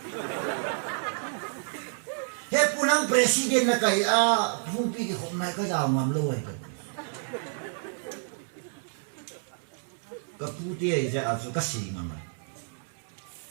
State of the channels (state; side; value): silent; left; 58 dB below the other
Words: nang president na kaya phumpi ki khom nai ka jaw ngam lo ai ka puti ai ja asu ka si mang